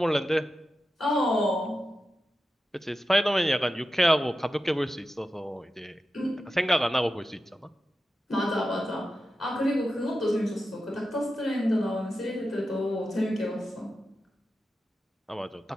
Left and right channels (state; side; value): normal; both; correlation 0.91